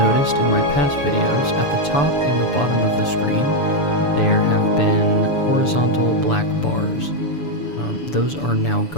in my past videos, at the top and the bottom of the screen, there have been horizontal black bars. Those are now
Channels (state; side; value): late; right; 7.0 ms